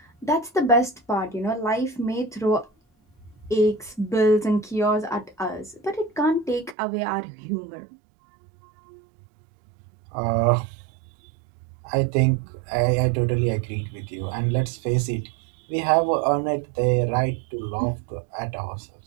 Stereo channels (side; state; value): left; drops out; at 6.8 s